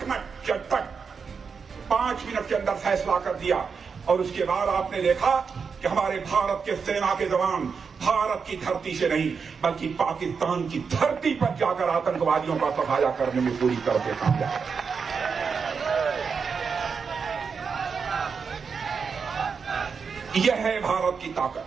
5 मिनट के अंदर फैसला कर दिया। और उसके बाद आपने देखा कि हमारे भारत के सेना के जवान भारत की धरती से नहीं बल्कि पाकिस्तान की धरती पर जाकर आतंकवादियों का सफाया करने में पूरी तरह से कामयाब। यह है भारत की ताकत।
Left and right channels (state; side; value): quieter; left; 5.7 dB